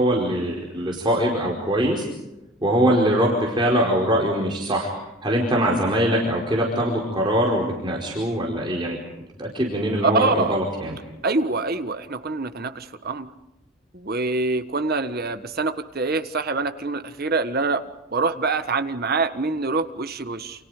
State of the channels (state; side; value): normal; both; correlation 0.30